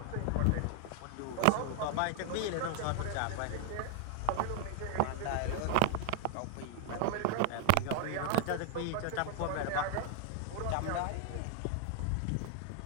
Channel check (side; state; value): both; different; correlation 0.00